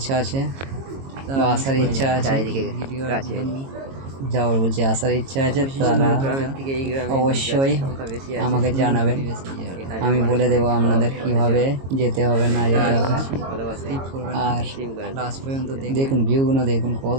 আছে বা আসার ইচ্ছা আছে, যাওয়ার বলছি আসার ইচ্ছা আছে, তারা অবশ্যই আমাকে জানাবেন। আমি বলে দেবো আপনাদের কিভাবে যেতে হবে না যেতে হবে। আর লাস্ট পর্যন্ত দেখুন ভিউগুলো, দেখুন কত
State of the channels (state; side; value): late; left; 22 ms